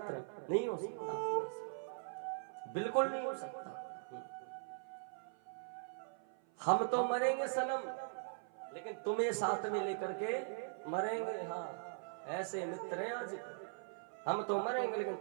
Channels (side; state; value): left; silent; 50 dB below the other